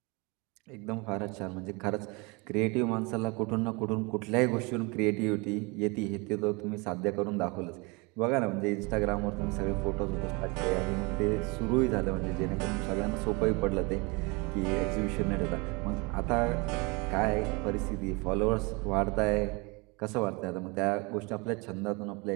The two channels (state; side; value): quieter; left; 28.0 dB